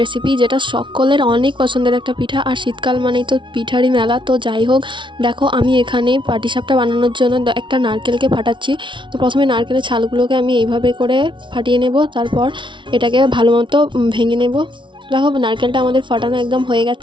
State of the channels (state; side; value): late; left; 0.24 ms